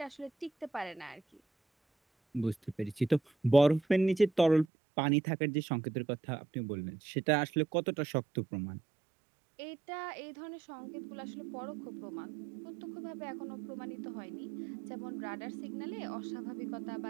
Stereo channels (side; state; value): left; drops out; at 4.7 s